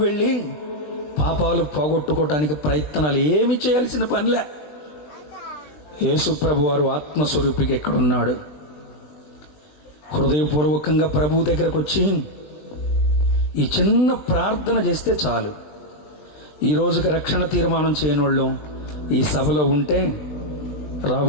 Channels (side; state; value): right; late; 20 ms